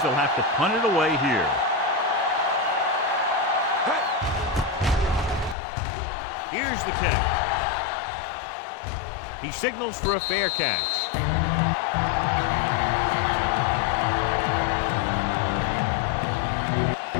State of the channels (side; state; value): right; drops out; at 5.6 s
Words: they'll have to punt it away here. Here's the kick. He signals for a fair catch.